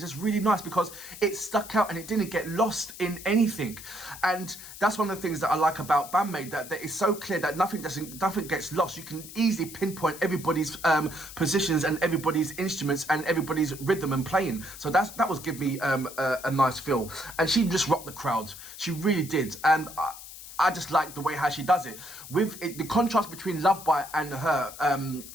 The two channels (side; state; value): left; noise; hiss, 14 dB below the sound